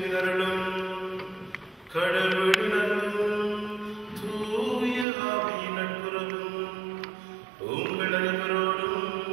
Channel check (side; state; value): left; drops out; at 5.1 s